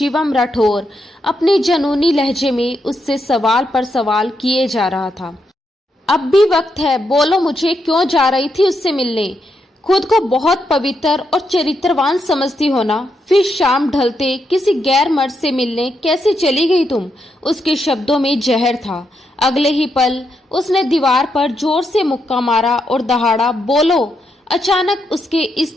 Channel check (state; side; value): normal; both; correlation 0.81